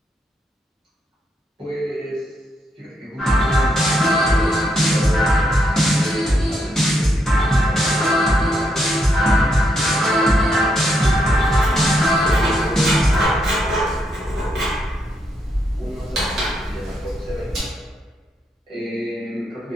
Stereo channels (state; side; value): normal; both; correlation 0.78